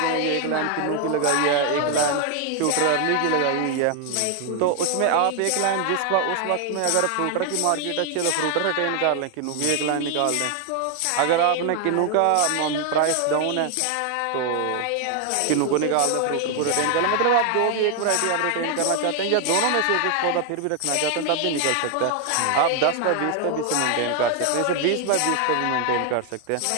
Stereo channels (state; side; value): different; both; correlation 0.00